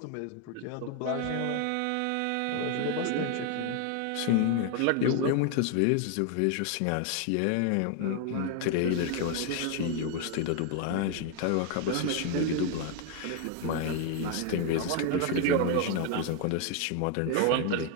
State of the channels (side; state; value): both; different; correlation 0.01